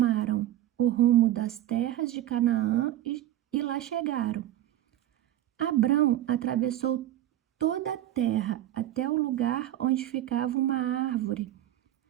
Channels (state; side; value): quieter; left; 13.2 dB